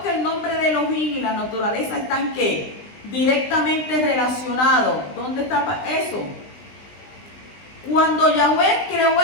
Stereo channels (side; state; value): right; late; 20 ms